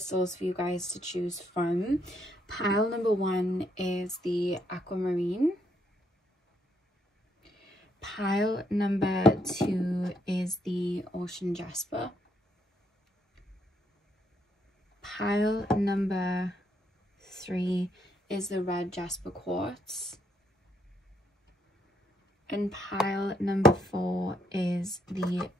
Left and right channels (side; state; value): both; normal; correlation 0.74